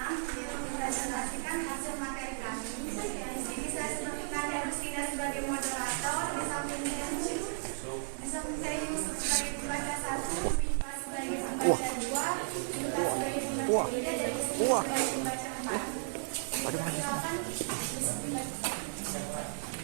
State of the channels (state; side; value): silent; left; digital silence